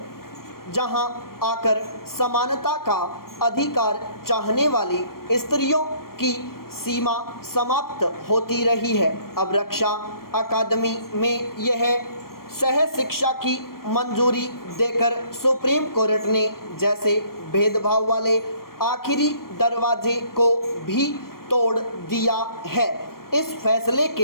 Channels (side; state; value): right; late; 0.93 ms